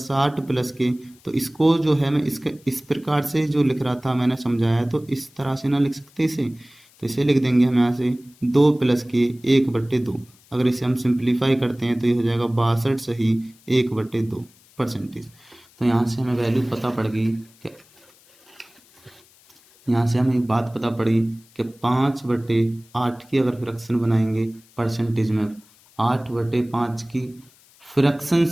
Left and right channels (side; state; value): left; noise; hiss, 29 dB below the sound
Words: प्लस के, तो इसको जो है मैं इसके इस प्रकार से जो लिख रहा था मैंने समझाया, तो इस तरह से ना लिख सकते इसे, तो इसे लिख देंगे हम यहाँ से 2 + के 1/2। अगर इसे हम सिंप्लीफाई करते हैं तो ये हो जाएगा 62 1/2%। तो यहाँ से हमें वैल्यू पता पड़ गई कि यहाँ से हमें एक बात पता पड़ी कि 5/8 की अगर फ्रैक्शन बनाएंगे परसेंटेज में, 8/5 की फ्रैक्शन